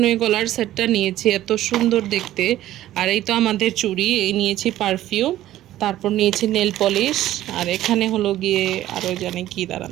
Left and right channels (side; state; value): left; quieter; 13.8 dB